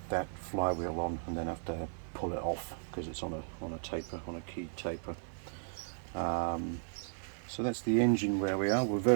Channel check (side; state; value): left; silent; digital silence